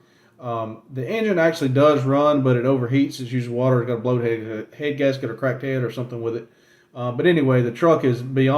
The engine actually does run, but it overheats. It's usually water. It's got a blown head gasket or cracked head or something with it. But anyway, the truck is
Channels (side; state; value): both; identical; correlation 1.00